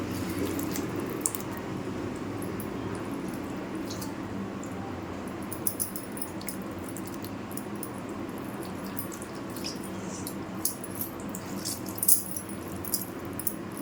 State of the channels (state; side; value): identical; both; correlation 1.00